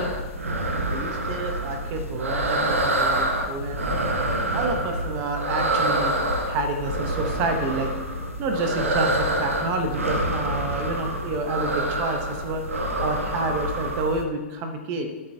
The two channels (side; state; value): both; normal; correlation -0.17